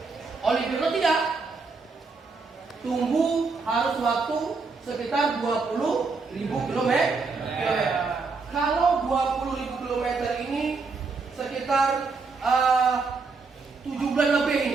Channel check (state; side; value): quieter; left; 4.4 dB